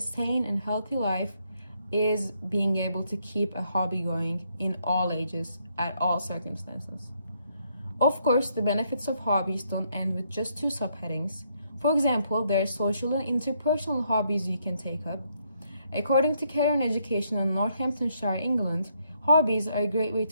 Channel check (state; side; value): inverted; both; correlation -0.73